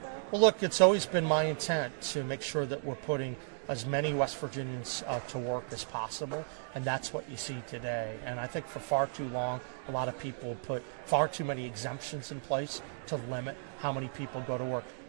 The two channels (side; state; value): left; silent; digital silence